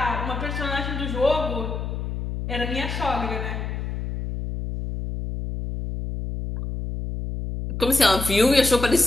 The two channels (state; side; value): noise; left; hum, 5 dB below the sound